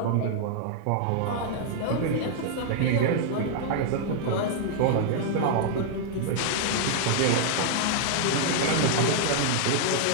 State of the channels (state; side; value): different; both; correlation -0.01